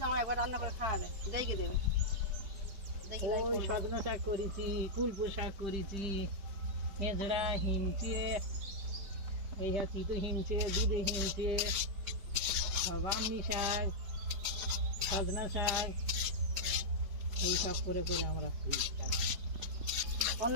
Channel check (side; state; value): left; late; 5.1 ms